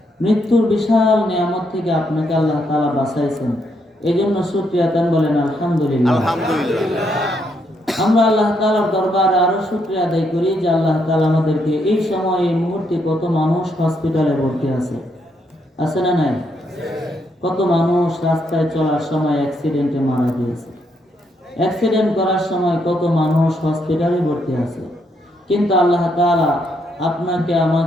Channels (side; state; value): both; normal; correlation 0.76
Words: মৃত্যুর বিশাল নিয়ামত থেকে আপনাকে আল্লাহ তাআলা বাঁচাইছেন, এজন্য শুকরিয়া দেন, বলেন আলহামদুলিল্লাহ। আমরা আল্লাহ তাআলার দরবারে আরো শুকরিয়া আদায় করি যে আল্লাহ তাআলা আমাদেরকে এই সময় এই মুহূর্তে কত মানুষ হসপিটালে ভর্তি আছে না নাই? কত মানুষ রাস্তায় চলার সময় অ্যাক্সিডেন্টে মারা গিয়েছে, অ্যাক্সিডেন্ট করার সময় কত মানুষ হসপিটালে ভর্তি আছে, কিন্তু আল্লাহ তাআলা আপনাকে